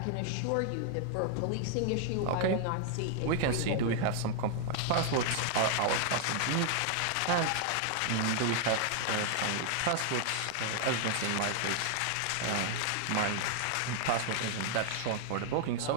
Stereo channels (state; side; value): different; both; correlation 0.00